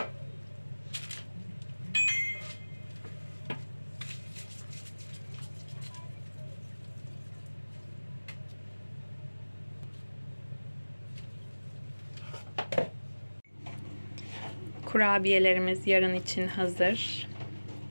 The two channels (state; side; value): inverted; both; correlation -1.00